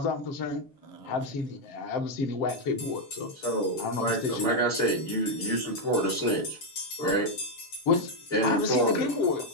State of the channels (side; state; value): right; late; 7.2 ms